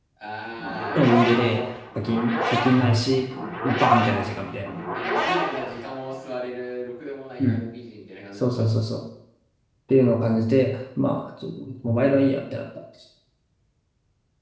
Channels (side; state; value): both; identical; correlation 1.00